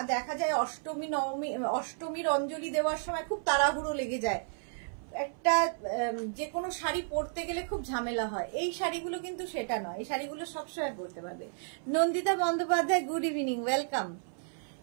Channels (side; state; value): left; silent; 56 dB below the other